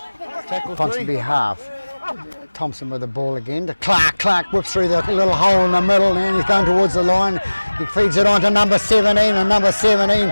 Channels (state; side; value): inverted; both; correlation -1.00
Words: Tackle 3. Ponsonby half. Thompson with the ball again to Clark. Clark whips through the little hole in the middle and he's going towards the line. He feeds it on to number 17, and number 17,